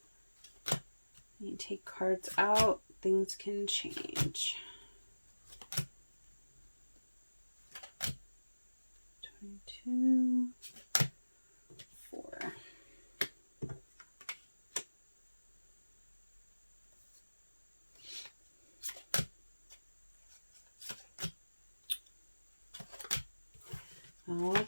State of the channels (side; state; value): both; inverted; correlation -1.00